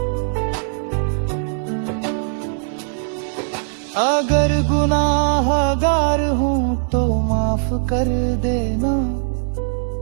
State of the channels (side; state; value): left; silent; 66 dB below the other